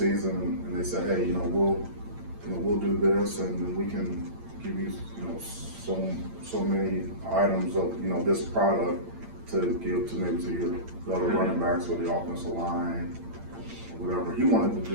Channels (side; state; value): left; late; 8.8 ms